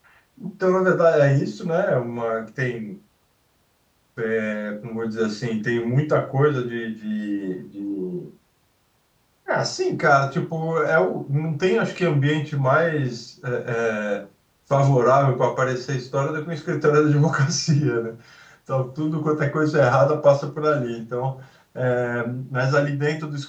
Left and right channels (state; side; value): identical; both; correlation 1.00